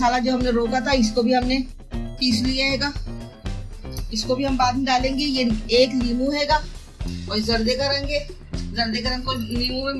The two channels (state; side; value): identical; both; correlation 1.00